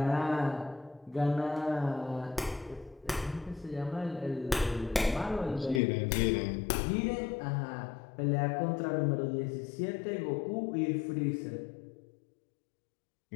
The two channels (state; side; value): drops out; right; at 5.8 s